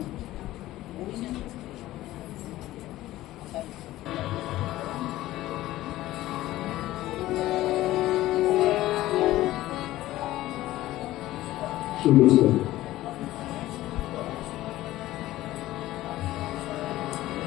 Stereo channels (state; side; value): quieter; right; 15.9 dB